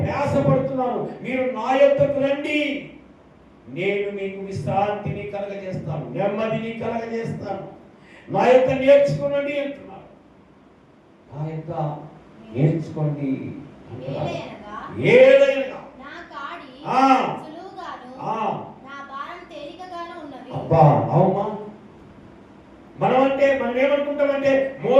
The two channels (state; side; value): identical; both; correlation 1.00